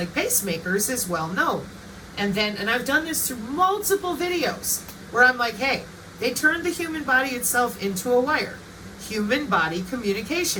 pacemakers is well known. And I've done this through multiple videos where I'm like, hey, they turned the human body itself into a wire. Human body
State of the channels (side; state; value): both; identical; correlation 1.00